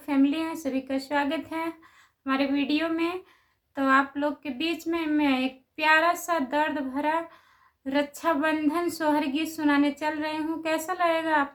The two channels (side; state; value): both; identical; correlation 1.00